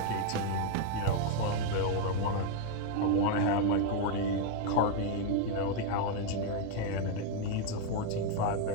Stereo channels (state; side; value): different; both; correlation 0.00